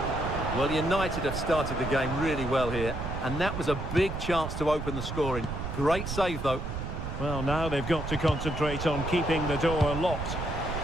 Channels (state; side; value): noise; right; rumble, 5 dB below the sound